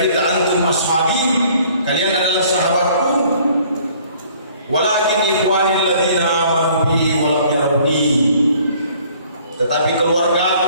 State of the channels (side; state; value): both; inverted; correlation -0.57